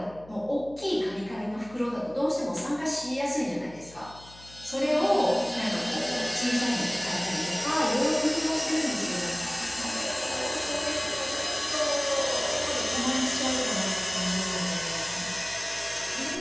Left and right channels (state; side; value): noise; left; hum, 21 dB below the sound